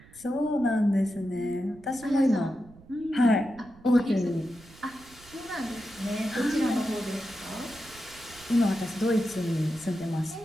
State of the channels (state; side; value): noise; right; rumble, 23 dB below the sound